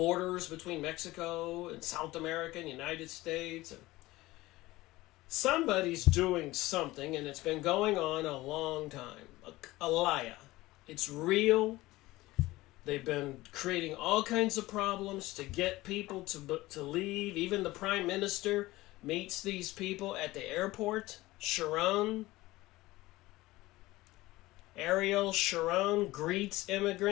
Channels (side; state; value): right; quieter; 18.7 dB